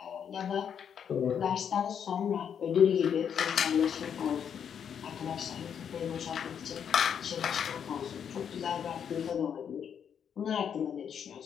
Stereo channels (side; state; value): right; quieter; 8.0 dB